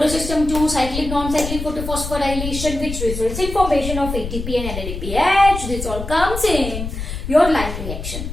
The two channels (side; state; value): left; noise; rumble, 7 dB below the sound